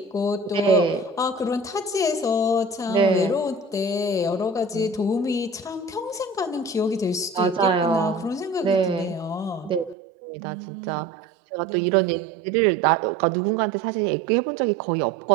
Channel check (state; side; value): drops out; left; at 10.0 s